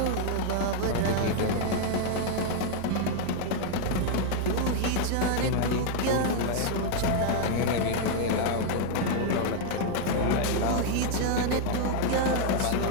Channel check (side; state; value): both; different; correlation 0.00